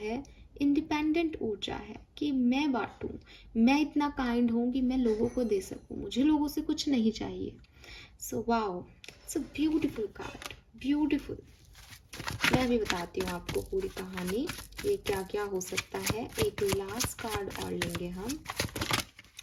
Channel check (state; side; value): identical; both; correlation 1.00